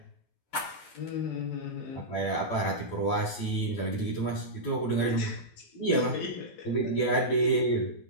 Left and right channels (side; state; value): right; late; 12 ms